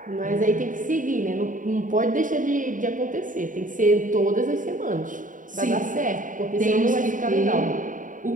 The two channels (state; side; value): late; left; 0.38 ms